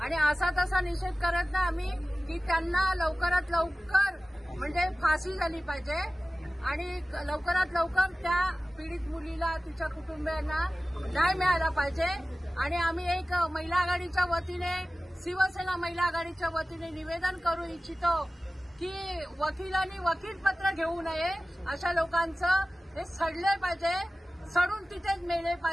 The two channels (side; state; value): both; normal; correlation 0.97